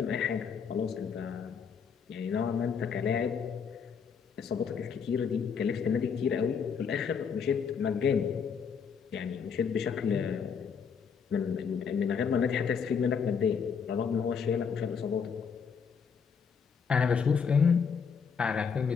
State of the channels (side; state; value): right; quieter; 6.4 dB